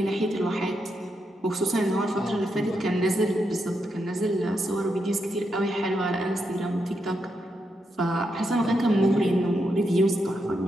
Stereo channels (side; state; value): both; normal; correlation 0.83